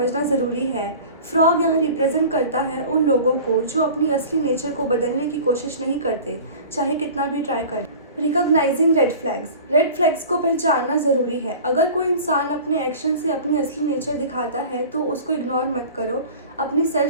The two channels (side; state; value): both; inverted; correlation -0.40